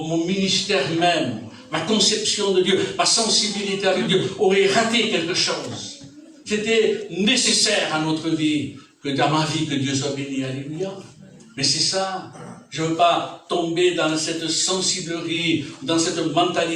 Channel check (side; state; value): both; identical; correlation 1.00